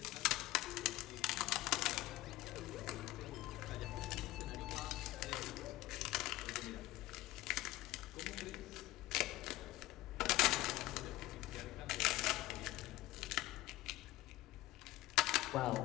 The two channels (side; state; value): right; quieter; 17.5 dB